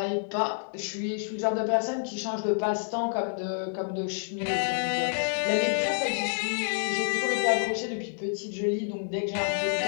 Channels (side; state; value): right; silent; digital silence